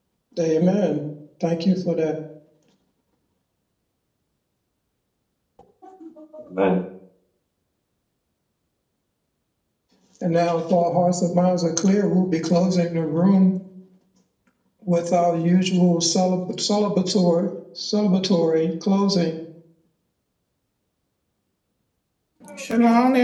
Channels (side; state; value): both; identical; correlation 1.00